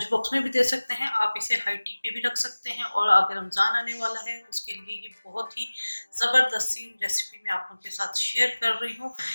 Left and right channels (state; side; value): inverted; both; correlation -1.00